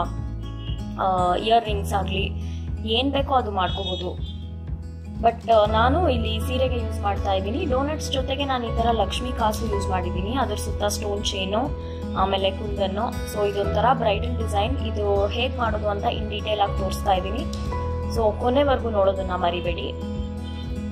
ಇಯರ್ ರಿಂಗ್ಸ್ ಆಗಲಿ ಏನ್ ಬೇಕೋ ಅದು ಮಾಡ್ಕೋಬಹುದು. ಬಟ್ ನಾನು ಇಲ್ಲಿ ಸೀರೆಗೆ ಯೂಸ್ ಮಾಡ್ತಾ ಇದ್ದೀನಿ. ಡೋನಟ್ಸ್ ಜೊತೆಗೆ ನಾನು ಈ ತರ ಲಕ್ಷ್ಮಿ ಕಾಸು ಯೂಸ್ ಮಾಡಿದ್ದೀನಿ, ಅದ್ರ ಸುತ್ತ ಸ್ಟೋನ್ ಚೈನು, ಆಮೇಲೆ ಕುಂದನ್ನು. ಸೊ ಇದೊಂಥರ ಬ್ರೈಡಲ್ ಡಿಸೈನ್. ಇದು ಹೇಗ್ ಮಾಡೋದು ಅಂತ ಇನ್ ಡೀಟೇಲ್ ಆಗಿ ತೋರಿಸ್ತಾ ಇದ್ದೀನಿ. ಸೊ ಕೊನೆವರೆಗೂ ನೋಡೋದನ್ನ ಮರಿಬೇಡಿ.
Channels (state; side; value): identical; both; correlation 1.00